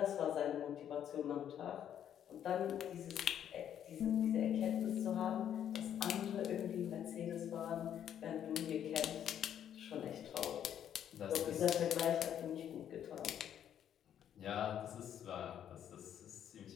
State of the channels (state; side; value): quieter; right; 9.8 dB